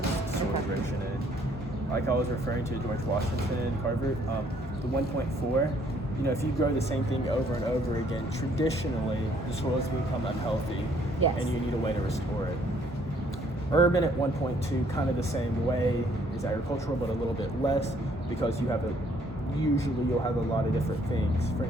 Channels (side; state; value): both; normal; correlation 0.64